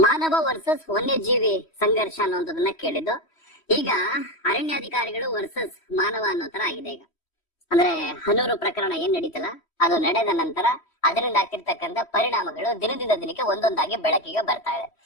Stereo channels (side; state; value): right; late; 3.1 ms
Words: ವರ್ಸಸ್ ವನ್ಯಜೀವಿ ಸಂಘರ್ಷ ಅನ್ನೋದನ್ನ ಕೇಳಿದ್ದು. ಈಗ ಅರಣ್ಯಾಧಿಕಾರಿಗಳು ವರ್ಸಸ್ ಮಾನವ ಅನ್ನೋ ತರ ಆಗಿದೆ. ಈಗ ಅಂದ್ರೆ ಹನೂರು ಪ್ರಕರಣ ಏನ್ ನಡೀತಲ್ಲ, ಅದು ನಡೆದ ನಂತರ ಅದರಿಂದ ಆಗ್ತಿರ್ತಕ್ಕಂಥ ಪರಿಣಾಮಗಳು ದಿನದಿಂದ ದಿನಕ್ಕೆ ಒಂದೊಂದಾಗಿ ಬೆಳಕಿಗೆ ಬರ್ತಾ ಇದೆ.